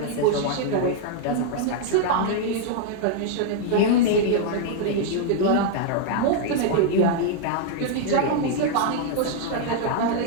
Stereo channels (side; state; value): both; different; correlation 0.00